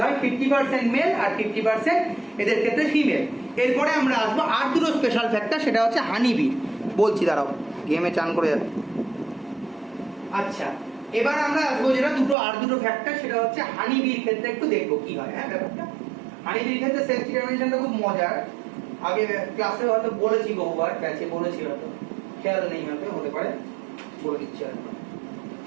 হয় 50% মেল আর 50% এদের ক্ষেত্রে ফিমেল। এরপরে আমরা আসবো আর দুটো স্পেশাল ফ্যাক্টর, সেটা হচ্ছে হানিবি। বলছি দাঁড়াও, গেমে চান করে যাচ্ছে। আচ্ছা, এবার আমরা আসবো যেটা আর দুটো ফ্যাক্টর, সেটা হচ্ছে হানিবির ক্ষেত্রে একটু দেখবো কি হয়। হ্যাঁ, ব্যাপারটা হানিবির ক্ষেত্রে সেক্স ডিটারমিনেশনটা খুব মজার। আগে ক্লাসে হয়তো বলেছি, বহুবার ব্যাচে বলেছি, হয়তো খেয়াল নেই, হয়তো হতে পারে, বলে দিচ্ছি আর।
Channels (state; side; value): drops out; left; at 12.4 s